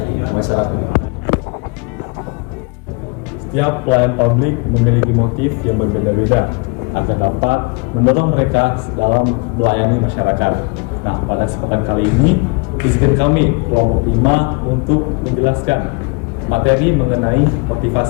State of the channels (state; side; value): quieter; right; 31.1 dB